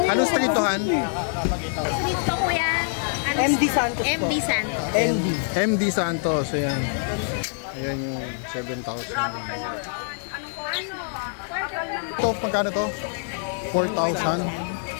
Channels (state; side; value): silent; right; digital silence